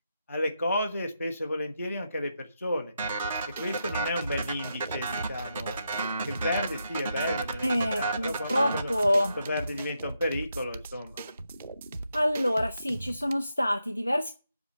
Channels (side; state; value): both; inverted; correlation -0.83